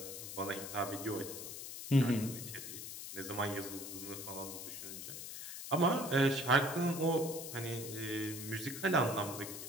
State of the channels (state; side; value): noise; left; hiss, 8 dB below the sound